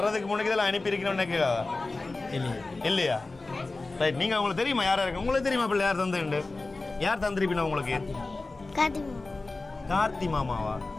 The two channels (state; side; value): quieter; right; 3.4 dB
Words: முன்னாடி இதெல்லாம் அனுப்பியிருக்கணும்னு நினைக்கிறதா இல்லையா? ரைட். நீங்கள் உங்களுக்கு தெரியுமா யாரா இருக்கு? உங்களுக்கு தெரியுமா பிள்ளை யார் தந்துண்டு? யார் தந்திருப்பினா உங்களுக்கு? கார்த்தி மாமாவா?